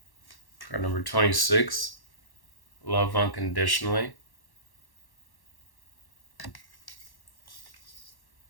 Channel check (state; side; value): late; right; 1.1 ms